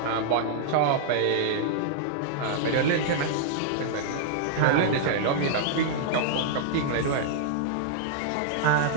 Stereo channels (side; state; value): both; different; correlation -0.01